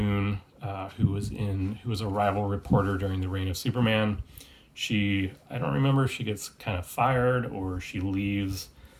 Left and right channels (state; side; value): identical; both; correlation 1.00